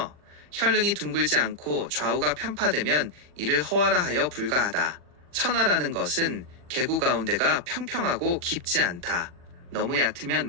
혈릉이 둥글지 않고 좌우가 편파되면 이를 허화라 하여 불가하다. 천화라는 것은 계구 가운데가 평평하고 깊지 않다. 너무 얕으면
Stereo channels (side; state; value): left; late; 40 ms